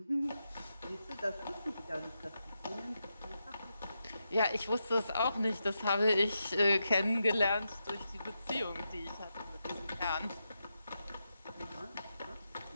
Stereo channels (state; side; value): inverted; both; correlation -0.86